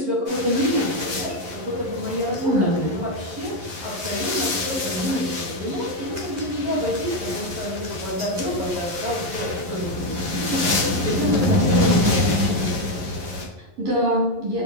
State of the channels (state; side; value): late; left; 11 ms